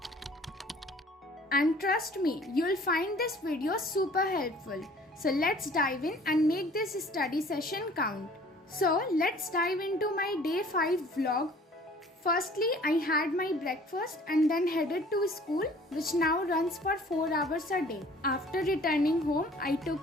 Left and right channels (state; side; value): normal; both; correlation 0.52